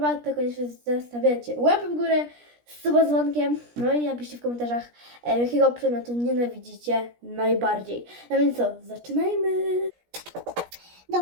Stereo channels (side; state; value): left; late; 17 ms